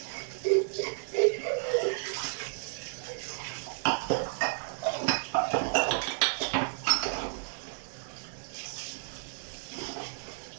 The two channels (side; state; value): left; silent; digital silence